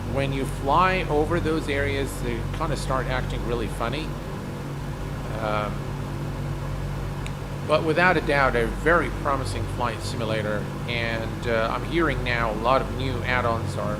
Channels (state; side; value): identical; both; correlation 1.00